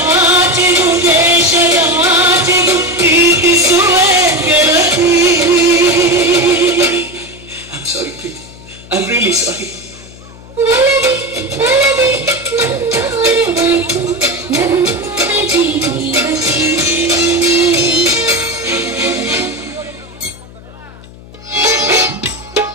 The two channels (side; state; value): left; noise; hum, 20 dB below the sound